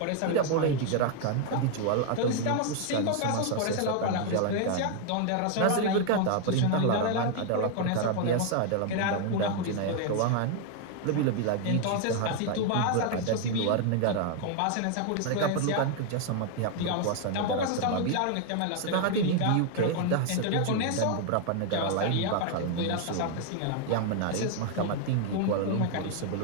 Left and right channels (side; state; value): both; different; correlation 0.01